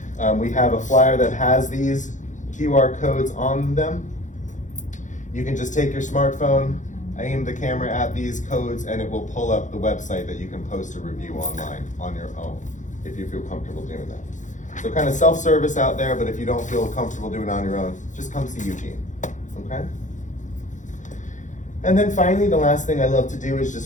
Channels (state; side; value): late; right; 0.36 ms